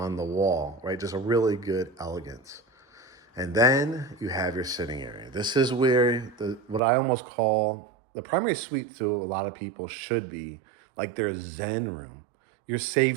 the wall, right? Just a really good elegance. And then you have your sitting area. This is where what I almost call the primary suite to a lot of people should be like their zen room, your safe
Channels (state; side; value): drops out; left; at 6.8 s